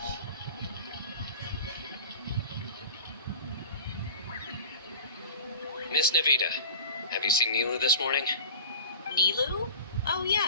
Miss Nahida, have you seen Nilu this morning? Nilu? Oh,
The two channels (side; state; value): both; inverted; correlation -0.39